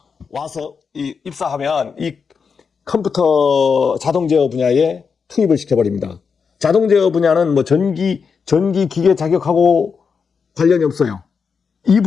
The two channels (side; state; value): right; quieter; 5.8 dB